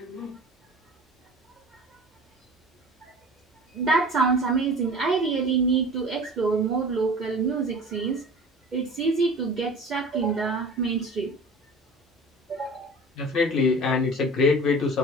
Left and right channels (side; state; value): both; normal; correlation 0.40